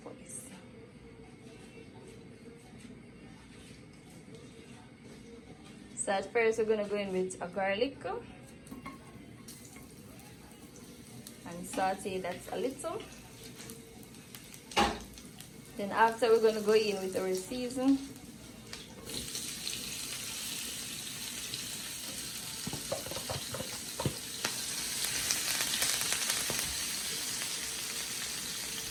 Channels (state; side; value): identical; both; correlation 1.00